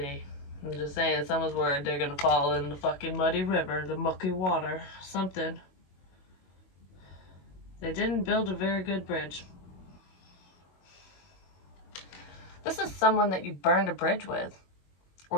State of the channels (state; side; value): late; right; 22 ms